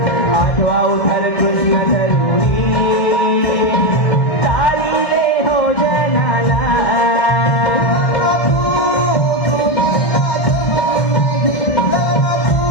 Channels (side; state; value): right; late; 2.0 ms